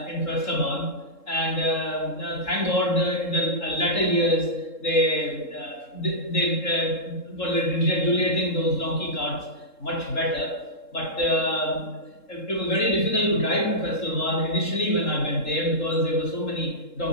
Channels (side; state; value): right; late; 3.7 ms